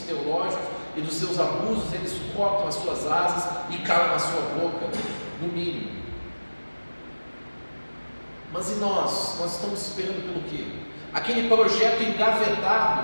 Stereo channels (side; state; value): both; inverted; correlation -1.00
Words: e dos seus abusos, eles cortam as suas asas e calam na sua boca, no mínimo. Mas e nós? Nós estamos esperando pelo quê? Aquele projeto